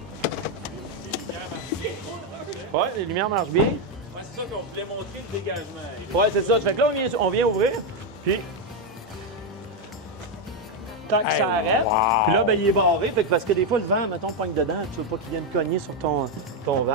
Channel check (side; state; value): both; normal; correlation 0.04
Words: Ouais, les lumières marchent bien. Ouais, c'est ça qu'on voulait montrer le dégagement. Ouais, c'est ça. Fait que là, on vient ouvrir, puis tant que ça arrête, wow. puis là, ben, il est barré. Fait que parce que des fois, le vent, mettons, pogne dedans, tu veux pas qu'il vienne cogner sur ton